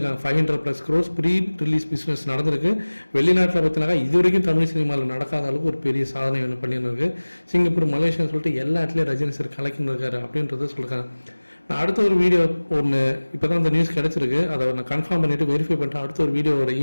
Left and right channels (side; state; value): both; inverted; correlation -1.00